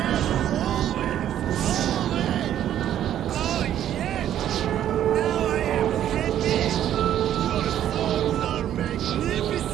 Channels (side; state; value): left; quieter; 11.1 dB